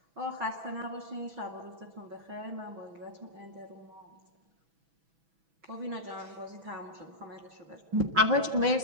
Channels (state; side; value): late; left; 6.1 ms